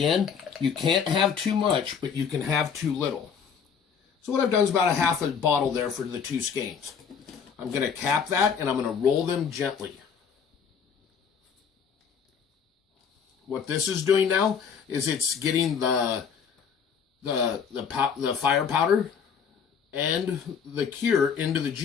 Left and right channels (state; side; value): quieter; right; 6.7 dB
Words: you can't have too much, but you can have too little. So what I've done is about a half a bottle there for the 2 skeins. I'm going to cap that and I'm going to roll them gently. What this is doing now is it's getting the fire powder and the cure into the